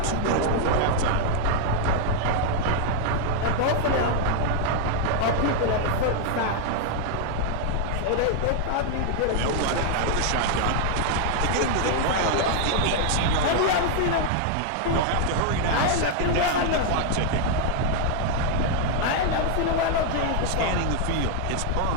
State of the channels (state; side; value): different; both; correlation 0.00